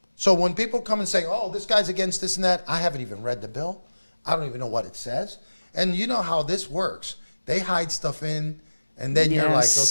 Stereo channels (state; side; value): inverted; both; correlation -1.00